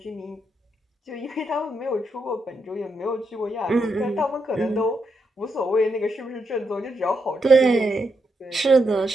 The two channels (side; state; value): both; normal; correlation 0.82